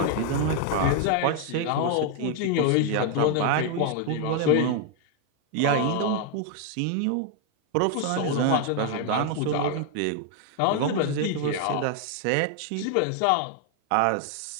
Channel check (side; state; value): both; different; correlation 0.00